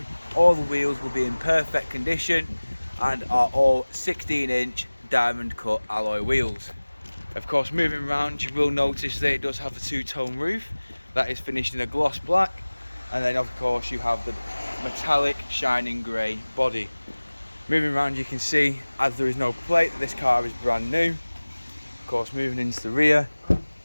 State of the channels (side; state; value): both; inverted; correlation -1.00